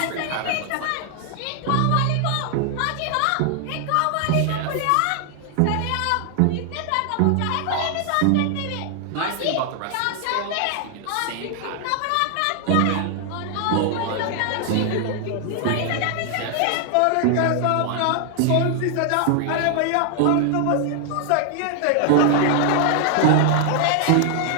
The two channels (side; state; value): both; different; correlation 0.00